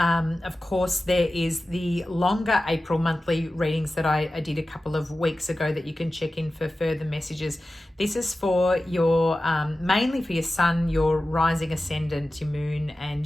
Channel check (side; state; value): both; normal; correlation 0.95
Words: course, there is the longer April monthly readings that I did a couple of weeks ago that you can check in for further messages. This is for your, mainly for your sun, your rising ascendant, your moon